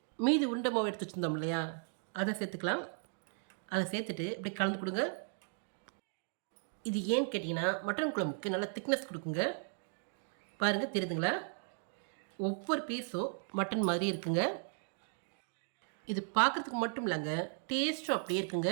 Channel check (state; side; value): silent; left; 54 dB below the other